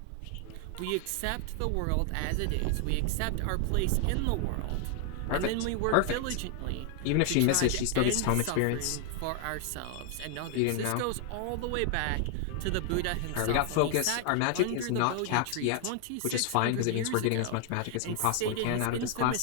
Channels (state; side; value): different; both; correlation 0.00